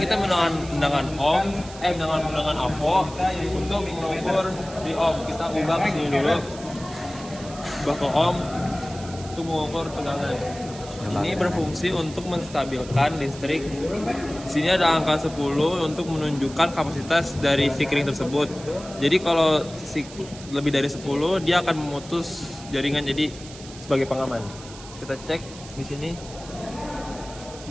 kita menggunakan avo untuk mengukur di ohm. Kita ubah ke sini dulu, ubah ke ohm untuk mengukur tegangan. Ini berfungsi untuk menstabilkan listrik. Di sini ada angka 10 untuk menunjukkan kapasitas dari si kering tersebut. Jadi kalau lebih dari 10, dia akan memutus jaringan, jadi sebagai pengaman. Kita cek di sini.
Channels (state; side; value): noise; right; hiss, 16 dB below the sound